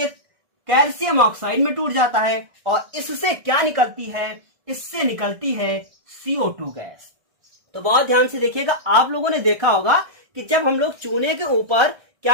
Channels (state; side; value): late; left; 1.6 ms